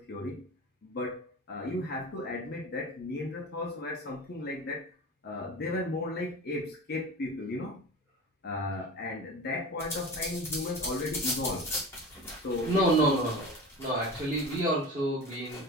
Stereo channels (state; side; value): normal; both; correlation 0.33